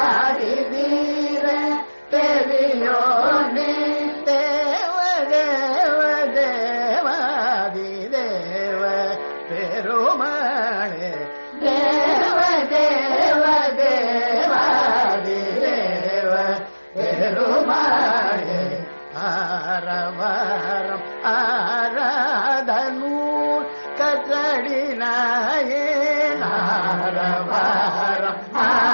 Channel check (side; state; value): both; inverted; correlation -1.00